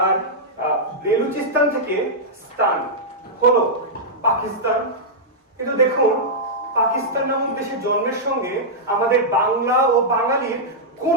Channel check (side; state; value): both; normal; correlation -0.09